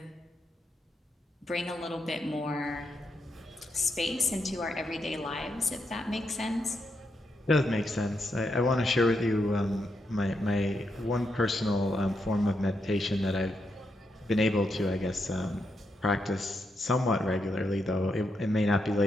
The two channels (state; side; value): normal; both; correlation 0.82